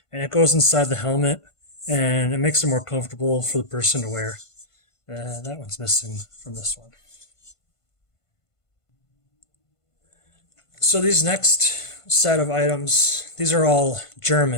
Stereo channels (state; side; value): late; right; 1.5 ms